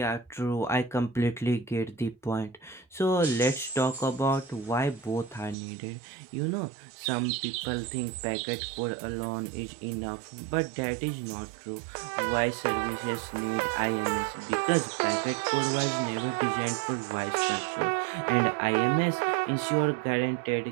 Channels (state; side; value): drops out; left; at 5.6 s